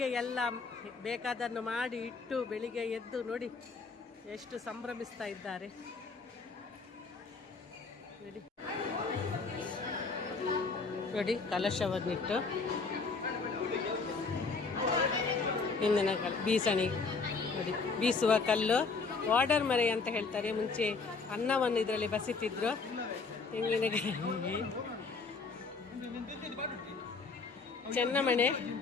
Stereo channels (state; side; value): quieter; right; 4.4 dB